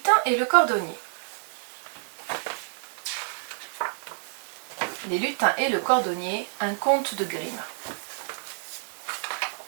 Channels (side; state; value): left; silent; 59 dB below the other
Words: et le cordonnier. Les lutins et le cordonnier, un conte de Grimm.